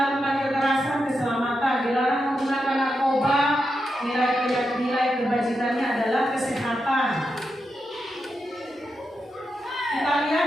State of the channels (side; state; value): both; normal; correlation 0.87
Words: kekerasan, keselamatan, dilarang menggunakan narkoba, nilai kebajikannya adalah kesehatan. Kita